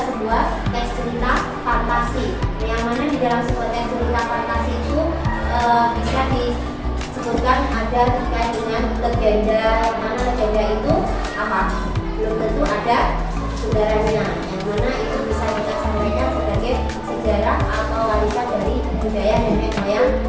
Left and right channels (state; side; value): identical; both; correlation 1.00